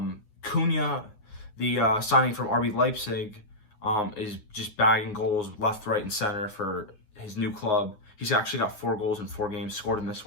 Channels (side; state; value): right; late; 9.6 ms